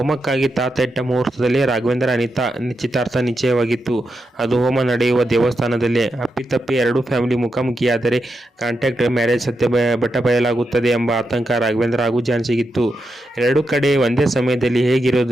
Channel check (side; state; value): both; normal; correlation 0.86